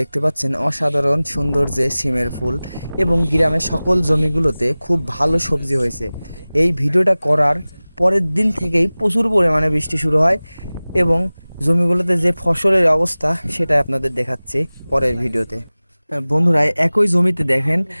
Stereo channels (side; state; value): both; inverted; correlation -0.99